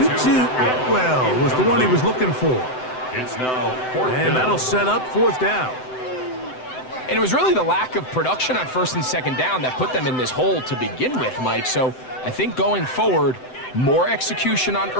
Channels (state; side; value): late; right; 7.9 ms